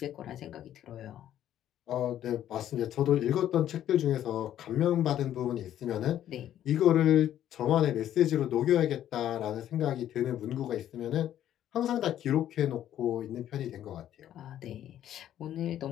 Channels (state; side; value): quieter; right; 11.4 dB